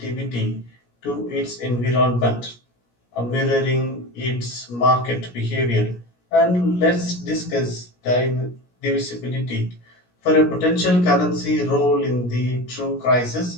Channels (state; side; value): late; right; 17 ms